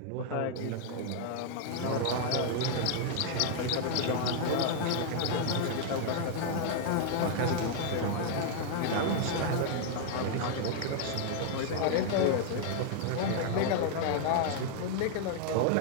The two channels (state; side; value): different; both; correlation 0.00